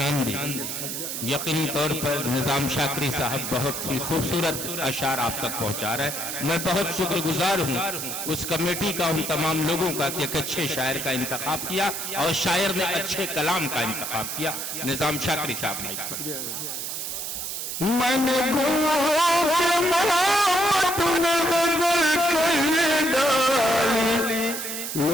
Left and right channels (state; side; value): noise; right; hiss, 5 dB below the sound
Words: दी। यकीनी तौर पर निजाम शाकरी साहब बहुत ही खूबसूरत अशार आप तक पहुँचा रहे हैं। मैं बहुत शुक्रगुजार हूँ उस कमेटी का, उन तमाम लोगों का कि एक अच्छे शायर का इंतखाब किया और शायर ने अच्छे कलाम का इंतखाब किया। निजाम शाकरी साहब ने मैंने डाली,